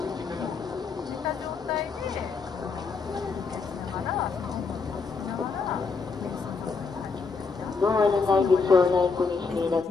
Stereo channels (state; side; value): quieter; right; 4.7 dB